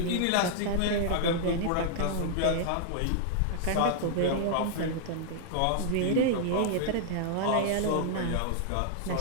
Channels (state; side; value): different; both; correlation -0.01